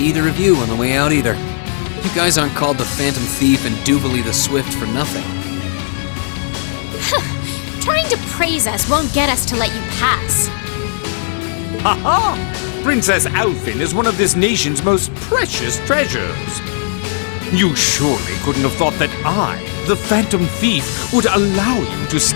of you on the way out either. You guys aren't called the Phantom Thief and Duvalie the Swift for nothing. Trying to praise us won't get us to let you pass. Ha ha! Princess Alfin is one of this nation's most precious treasures. You surely couldn't have thought that I, the Phantom Thief, would allow you to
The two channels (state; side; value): silent; right; digital silence